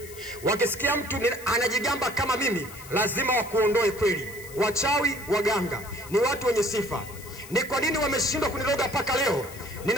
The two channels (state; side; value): noise; left; hiss, 17 dB below the sound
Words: Wakisikia mtu anajigamba kama mimi, lazima wakuondoe kweli. Wachawi, waganga ni watu wenye sifa. Ni kwa nini wameshindwa kuniroga mpaka leo?